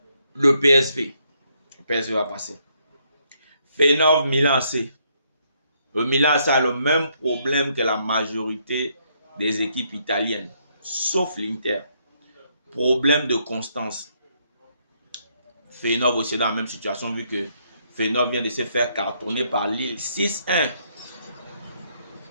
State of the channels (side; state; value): both; inverted; correlation -0.73